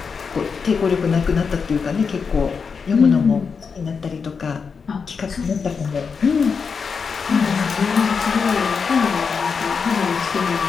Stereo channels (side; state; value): right; quieter; 5.6 dB